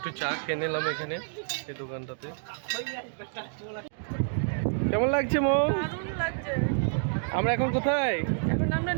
চা খেয়ে নিলাম এখানে এই দোকানটাতে। কেমন লাগছে মো? দারুণ লাগছে। আমরা এখন কোথায়? এখন আমরা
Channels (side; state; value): left; silent; digital silence